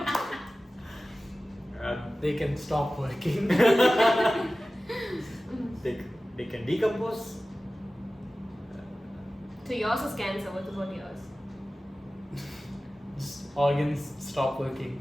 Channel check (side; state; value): both; normal; correlation 0.96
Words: They can stop working. They can decompose. So yours is cancer. What about yours? Organs stop working.